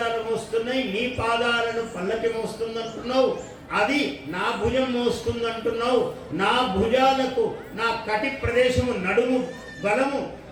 మోస్తున్నాయి, నీ పాదాలను పల్లకి మోస్తుందంటున్నావు. అది నా భుజం మోస్తుందంటున్నావు. నా భుజాలకు నా కటి ప్రదేశము నడుము బలము,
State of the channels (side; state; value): both; identical; correlation 1.00